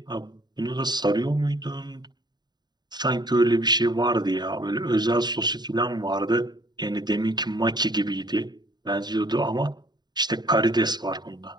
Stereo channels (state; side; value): late; left; 0.20 ms